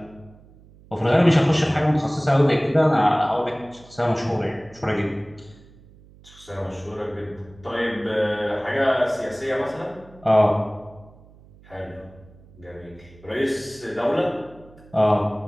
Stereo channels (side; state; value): right; noise; hum, 24 dB below the sound